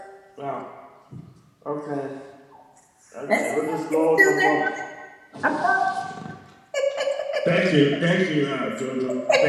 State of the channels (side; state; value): both; identical; correlation 1.00